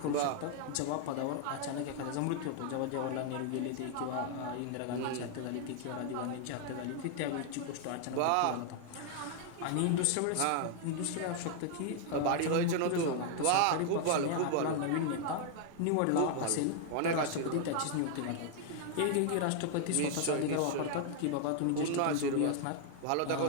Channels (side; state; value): both; different; correlation 0.00